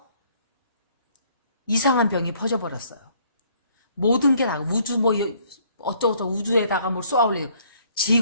이상한 병이 퍼져버렸어요. 모든 게 다 우주 뭐 어쩌고저쩌고 우주에다가 뭘 쏘아올리고,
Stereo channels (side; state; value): both; inverted; correlation -0.62